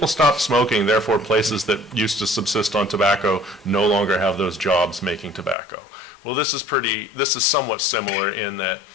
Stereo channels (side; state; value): right; drops out; at 5.6 s